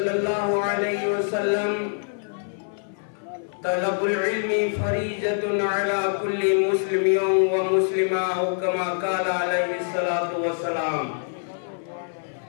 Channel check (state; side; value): silent; right; 57 dB below the other